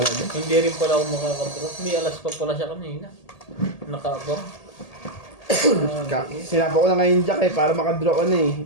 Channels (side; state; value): right; late; 1.8 ms